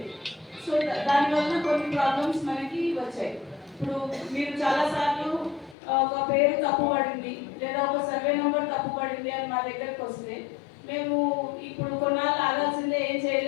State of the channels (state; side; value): drops out; right; at 5.8 s